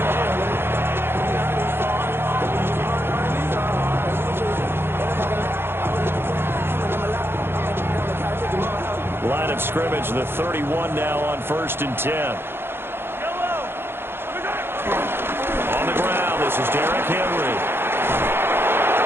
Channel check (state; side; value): late; left; 0.11 ms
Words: Line of scrimmage, the 31 now on 1st and 10. On the ground, this is Derrick Henry.